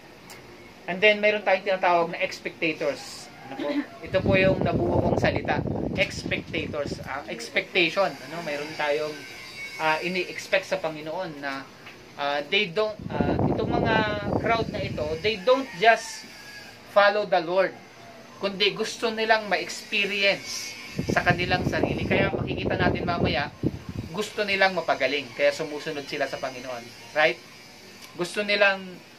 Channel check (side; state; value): both; identical; correlation 1.00